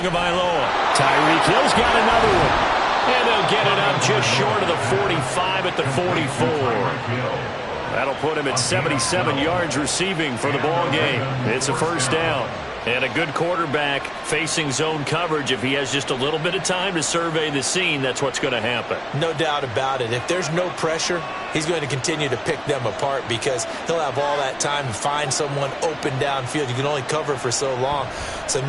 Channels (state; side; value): identical; both; correlation 1.00